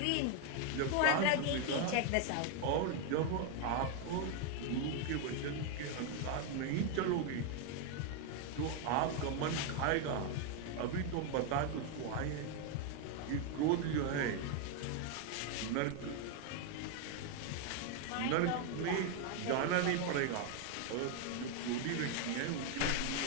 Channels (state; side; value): different; both; correlation 0.01